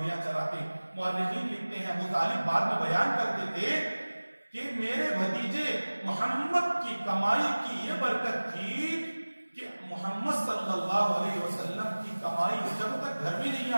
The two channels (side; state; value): both; inverted; correlation -1.00